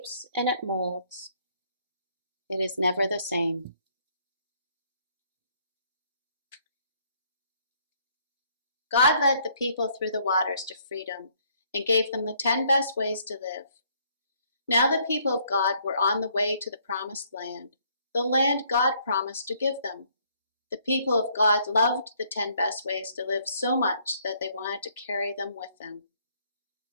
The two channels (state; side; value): inverted; both; correlation -0.66